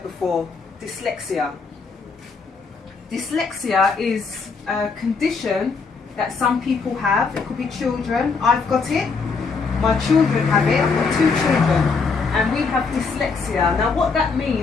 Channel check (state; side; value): quieter; right; 4.7 dB